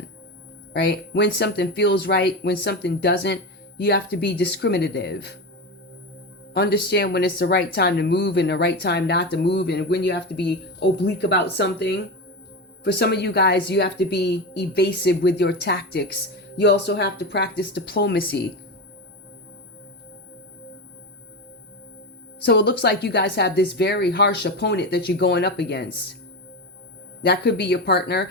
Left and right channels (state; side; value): normal; both; correlation 0.20